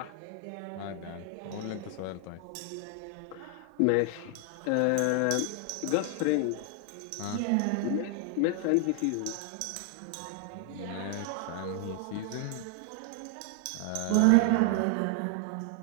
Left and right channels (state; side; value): different; both; correlation 0.00